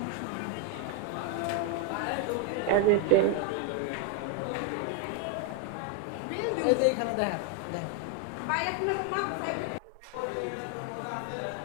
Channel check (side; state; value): both; different; correlation 0.01